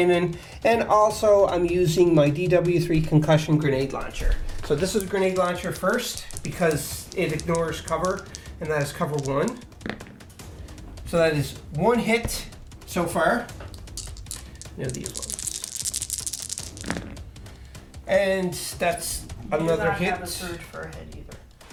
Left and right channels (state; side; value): identical; both; correlation 1.00